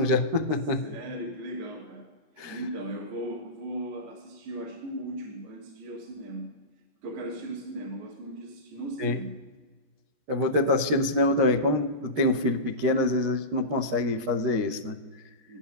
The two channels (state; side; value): late; left; 13 ms